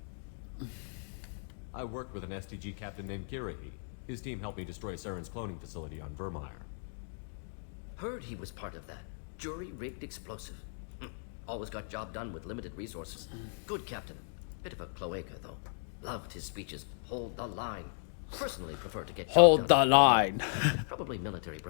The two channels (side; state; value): right; silent; digital silence